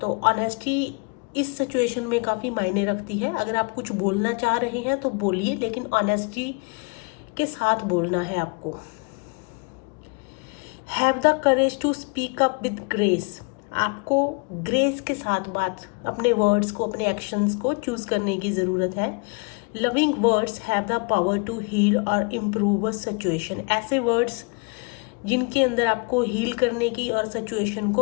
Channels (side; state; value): right; quieter; 32.7 dB